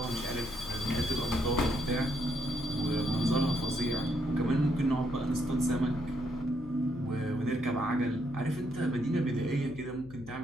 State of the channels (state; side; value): noise; left; hum, 16 dB below the sound